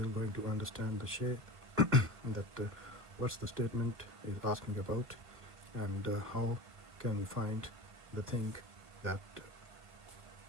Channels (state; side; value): late; left; 1.7 ms